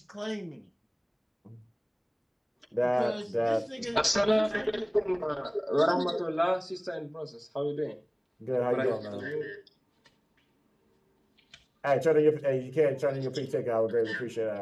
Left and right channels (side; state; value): both; identical; correlation 1.00